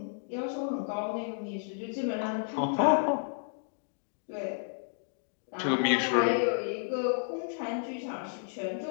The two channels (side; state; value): right; silent; digital silence